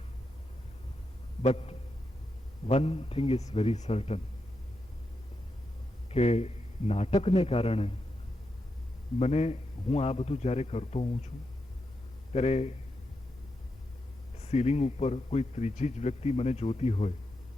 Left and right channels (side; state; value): both; normal; correlation 0.86